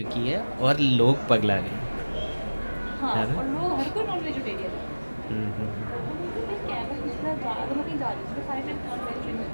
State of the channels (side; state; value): both; inverted; correlation -1.00